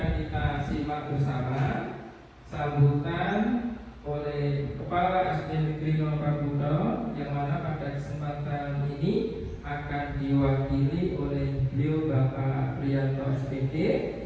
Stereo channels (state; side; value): identical; both; correlation 1.00